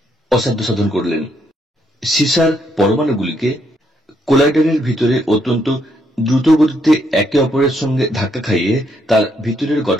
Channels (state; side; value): normal; both; correlation 0.74